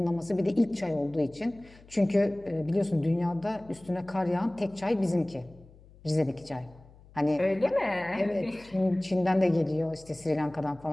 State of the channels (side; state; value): left; noise; hum, 24 dB below the sound